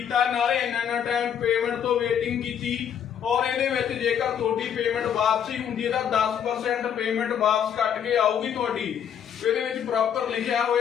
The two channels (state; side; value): quieter; right; 8.7 dB